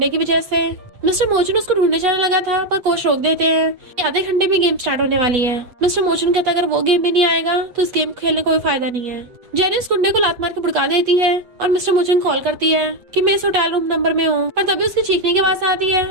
की वजह से। मिस्टर मोचुन उसको ढूंढने जाने लगा था पर कोच रोक देते हैं कि आधे घंटे में गेम स्टार्ट होने वाली है। मिस्टर मोचुन कहता है, अगर वो गेम में नहीं आएगा तो इस गेम खेलने का कोई फायदा नहीं है। जेनी उस गुंडे को लात मार के भड़का देती है और मिस्टर मोचुन कॉल करती है कि मैं इस होटल रूम नंबर में हूँ, पर तभी उसकी चीखने की आवाज आती है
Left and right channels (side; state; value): left; late; 8.2 ms